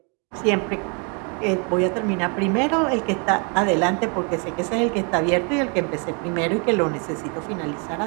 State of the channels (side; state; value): left; quieter; 34.8 dB